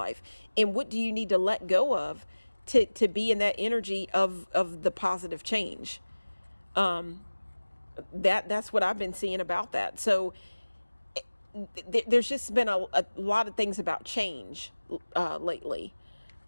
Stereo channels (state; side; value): inverted; both; correlation -1.00